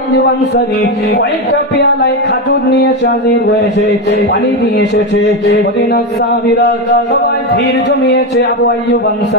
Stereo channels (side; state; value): both; normal; correlation 0.11